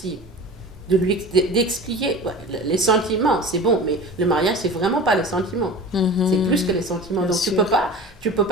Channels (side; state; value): both; normal; correlation 0.35